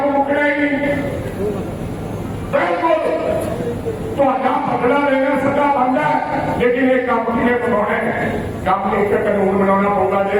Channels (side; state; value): left; noise; hum, 30 dB below the sound